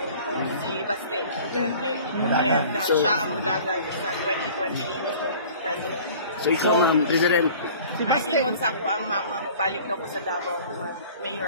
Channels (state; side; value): inverted; both; correlation -0.46